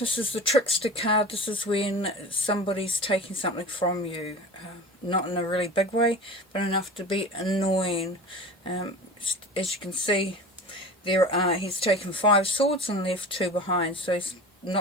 is the Trickster card. This is when somebody's taking something from you. Not in a really big way, but enough to be annoying. As you can see, he's taken 5 swords and left 2 behind, so he's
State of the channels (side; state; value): both; normal; correlation 0.34